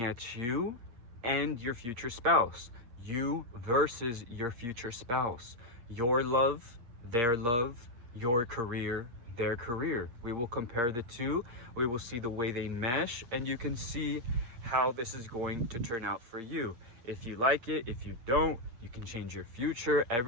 at you and your future spouse. You versus your future spouse. Your love, your career, their career. We will compare the two. We will see the way they mesh, and you can see how this is going to turn out for you. If you like it, if you don't, you can change your future.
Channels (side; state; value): left; late; 8.6 ms